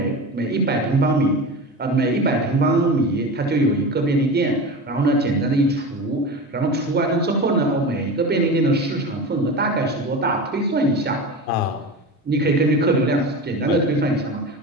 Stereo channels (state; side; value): normal; both; correlation 0.28